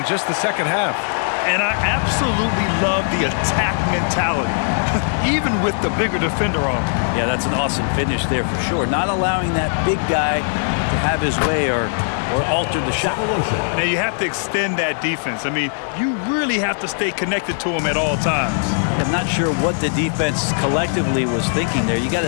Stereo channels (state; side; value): silent; right; digital silence